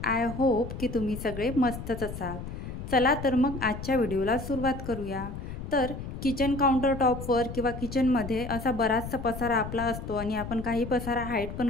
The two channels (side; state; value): left; noise; rumble, 8 dB below the sound